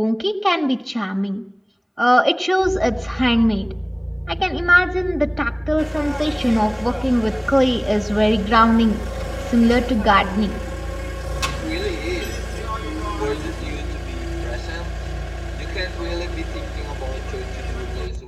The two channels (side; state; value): both; identical; correlation 1.00